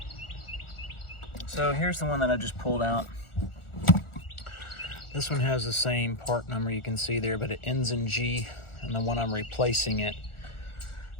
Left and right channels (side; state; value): right; late; 1.4 ms